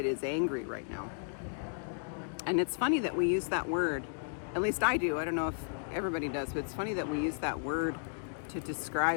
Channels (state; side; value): silent; right; digital silence